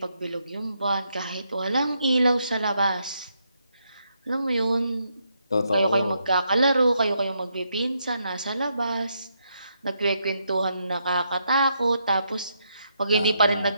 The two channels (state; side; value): inverted; both; correlation -0.78